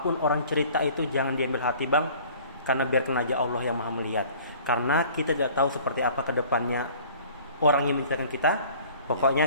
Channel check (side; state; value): both; inverted; correlation -0.50